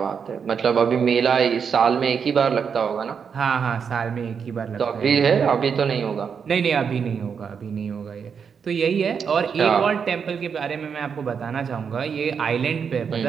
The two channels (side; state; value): left; quieter; 6.6 dB